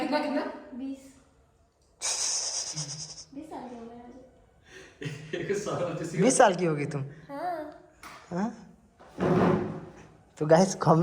साल की उम्र है। 20 साल की होगी तुम? हाँ। हाँ? तो गाइस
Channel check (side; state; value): both; identical; correlation 1.00